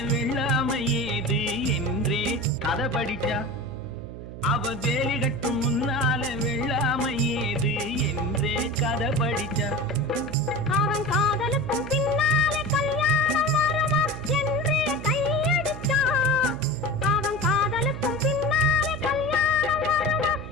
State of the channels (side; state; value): right; noise; hum, 11 dB below the sound